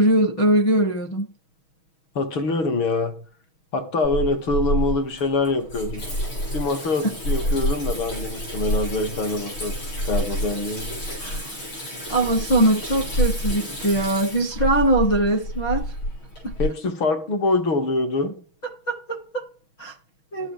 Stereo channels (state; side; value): late; right; 6.3 ms